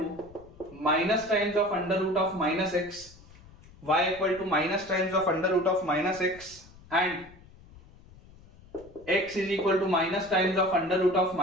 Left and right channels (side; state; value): left; noise; rumble, 23 dB below the sound